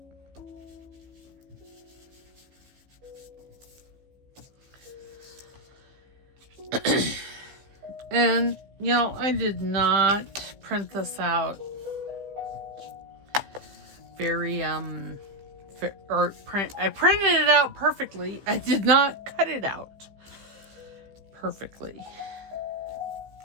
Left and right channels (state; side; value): late; left; 15 ms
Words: And, I did not print this out very, I printed it out perfectly. I did not cut it out perfectly.